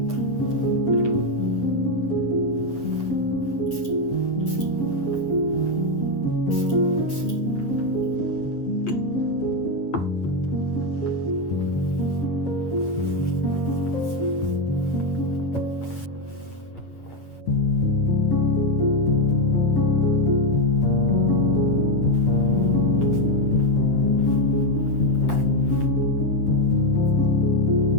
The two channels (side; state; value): right; late; 8.4 ms